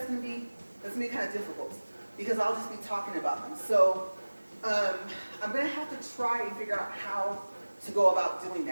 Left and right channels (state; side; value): inverted; both; correlation -1.00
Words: gonna be kind of difficult, because I'll just be talking about them. So I'm gonna have to try and figure out how to go about doing